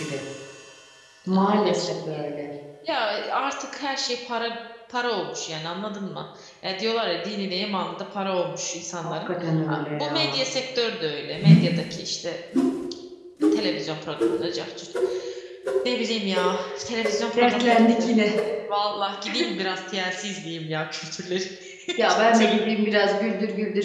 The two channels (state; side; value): identical; both; correlation 1.00